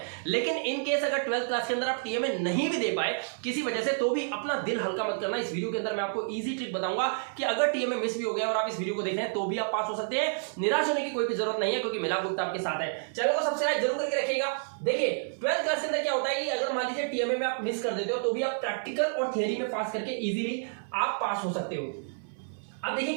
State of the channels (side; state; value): left; silent; 58 dB below the other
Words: लेकिन इन केस अगर 12th क्लास के अंदर आप टीएमए नहीं भी दे पाए किसी वजह से, तो भी अपना दिल हल्का मत करना। इस वीडियो के अंदर मैं आपको इजी ट्रिक बताऊंगा कि अगर टीएमए मिस भी हो गया और आप इस वीडियो को देख रहे हैं तो भी आप पास हो सकते हैं। निराश होने की कोई भी जरूरत नहीं है, क्योंकि मिला गुप्ता आपके साथ है। चैनल को सब्सक्राइब जरूर करके रखिएगा। देखिए 12th क्लास के अंदर क्या होता है कि अगर मान लीजिए टीएमए में आप मिस कर देते हो तो भी आप प्रैक्टिकल और थ्योरी में पास करके इजीली आप पास हो सकते हो। अब